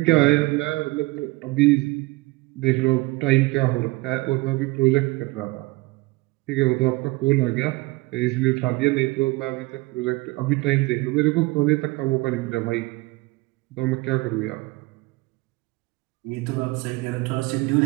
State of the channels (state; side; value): quieter; left; 22.3 dB